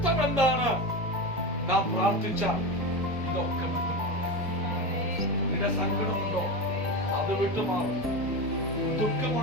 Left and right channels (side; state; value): both; normal; correlation 0.21